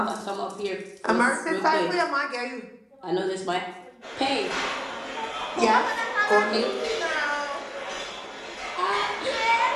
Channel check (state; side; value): identical; both; correlation 1.00